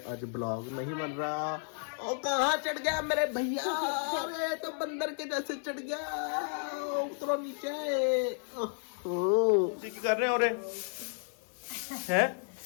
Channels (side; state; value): right; silent; digital silence